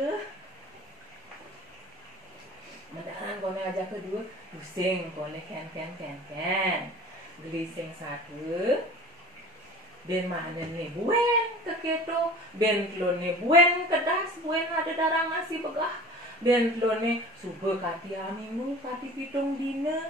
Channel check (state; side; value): normal; both; correlation 0.41